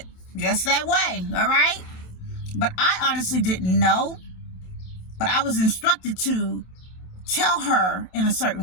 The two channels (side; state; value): right; late; 27 ms